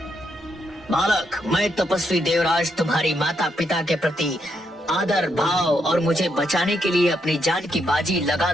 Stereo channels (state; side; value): normal; both; correlation 0.79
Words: बालक, मैं तपस्वी देवराज तुम्हारी माता पिता के प्रति आदर भाव और मुझे बचाने के लिए अपनी जान की बाजी लगा